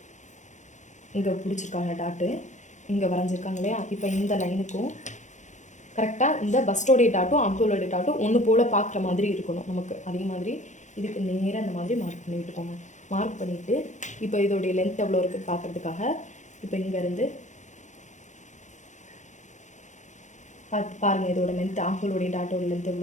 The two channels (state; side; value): late; right; 0.35 ms